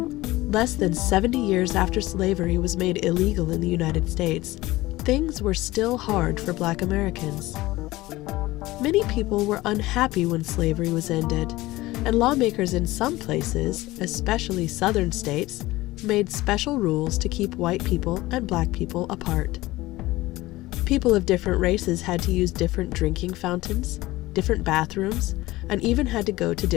less than 70 years after slavery was made illegal in the United States, things were still hard for Black Americans. Many people were unhappy when slavery was ended, and lawmakers in some places, especially southern states, made special rules to keep white people and Black people apart. People of different races had to use different drinking fountains, different bathrooms, and even had to go to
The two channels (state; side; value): quieter; right; 18.5 dB